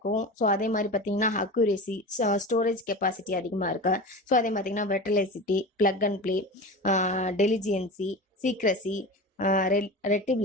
ஸோ அதே மாதிரி பார்த்தீங்கன்னா அக்யூரேசி, ஸ்டோரேஜ் கெப்பாசிட்டி அதிகமாக இருக்கு. ஸோ அதே பார்த்தீங்கன்னா வெர்டலைசிட்டி, பிளக் அண்ட் ப்ளே, டெலிஜியன்சி, சீக்ரஸி,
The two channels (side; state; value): both; normal; correlation 0.30